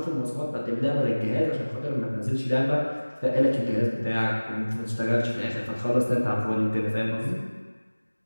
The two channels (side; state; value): both; inverted; correlation -1.00